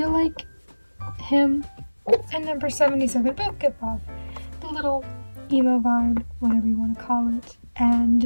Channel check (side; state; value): both; inverted; correlation -1.00